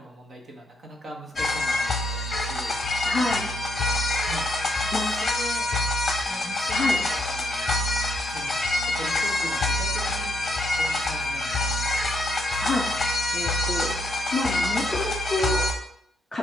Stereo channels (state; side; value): normal; both; correlation 0.76